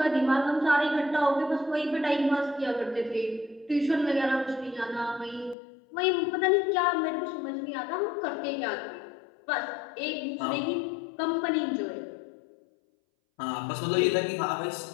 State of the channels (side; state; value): right; drops out; at 5.6 s